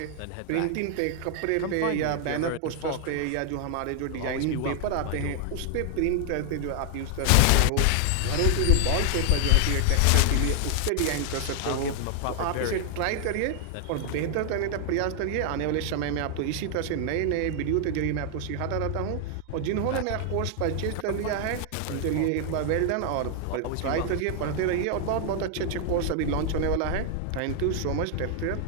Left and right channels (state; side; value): different; both; correlation 0.00